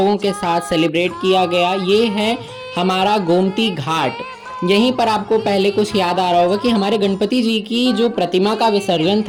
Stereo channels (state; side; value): identical; both; correlation 1.00